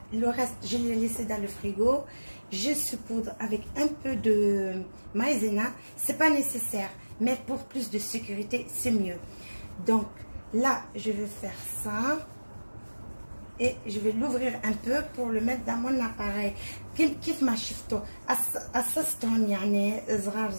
le reste je l'ai laissé dans le frigo. Je saupoudre avec un peu de maïzena, c'est pas nécessaire, mais pour plus de sécurité c'est mieux. Donc là je vais faire ça et je vais l'ouvrir un peu pour le mettre dans mon appareil. كيف ما شفتوا قصصتهم يعني صغار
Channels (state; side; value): inverted; both; correlation -1.00